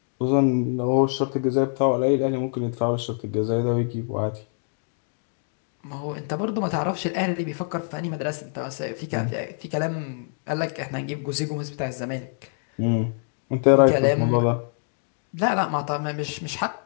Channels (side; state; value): right; silent; digital silence